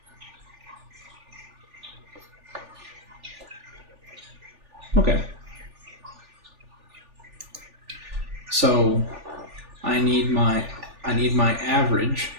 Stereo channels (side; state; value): left; late; 3.4 ms